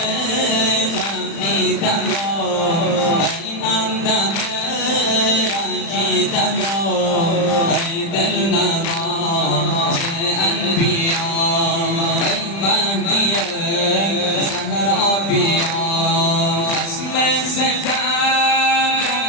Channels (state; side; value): late; right; 35 ms